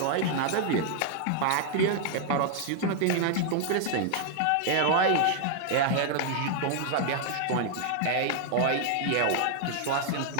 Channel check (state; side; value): different; both; correlation 0.00